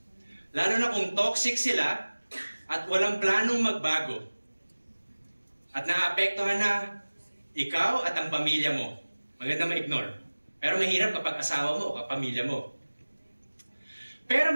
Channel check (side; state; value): both; inverted; correlation -1.00